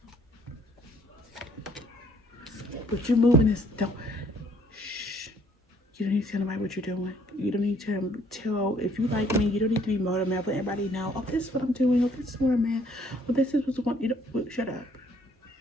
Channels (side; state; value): both; normal; correlation 0.62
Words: But you're moving this, don't, shh. You don't need to tell nobody what you're doing. You don't need to tell, if you like me, you don't need to be motivated, let everybody know, oh, this is what I'm doing, oh, this is where I'm at, oh, this is what's going, you know, shut up.